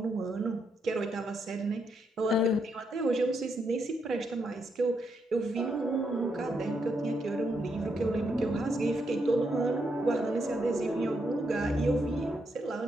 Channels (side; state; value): both; normal; correlation 0.79